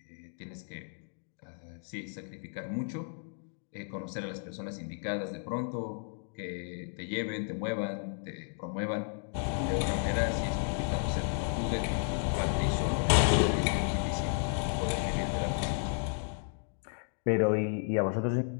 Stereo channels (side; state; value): right; silent; 56 dB below the other